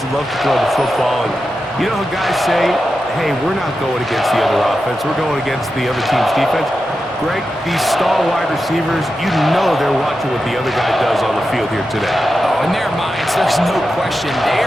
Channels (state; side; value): normal; both; correlation 0.90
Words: that love to throw the football, and you know how guys say, hey, we're not going against the other offense, we're going against the other team's defense. Greg, these star wide receivers, you know they're watching what the other guy does on the field here today. Oh, in their minds, there's no question. They